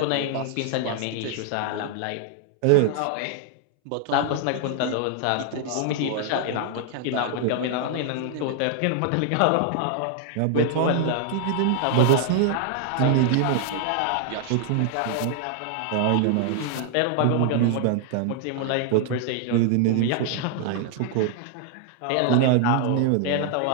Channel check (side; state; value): both; different; correlation 0.00